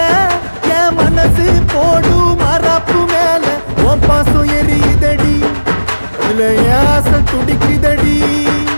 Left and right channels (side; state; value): both; inverted; correlation -1.00